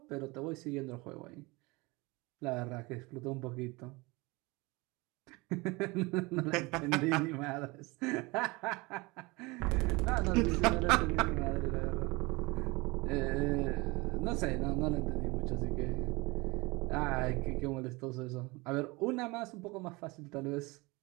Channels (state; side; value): quieter; left; 24.5 dB